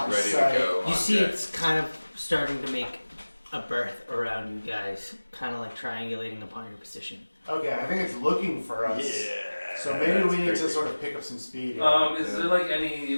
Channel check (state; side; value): inverted; both; correlation -1.00